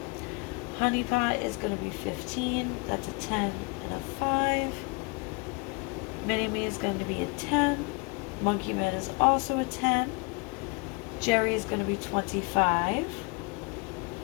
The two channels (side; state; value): right; quieter; 30.8 dB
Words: Honey Pot is going to be 15. That's a 10 and a 5. Mini Me is going to be a 10. Monkey Man is also a 10. Jerry is going to be 25.